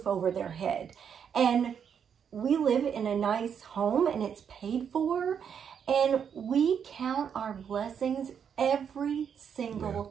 over their head. And we live in a nice home and it's paid for. And we count our blessings every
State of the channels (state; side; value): quieter; left; 7.7 dB